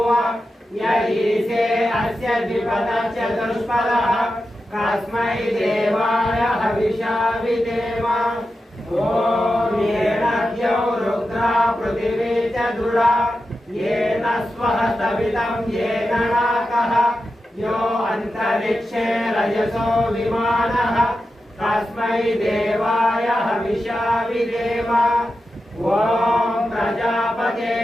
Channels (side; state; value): both; normal; correlation 0.91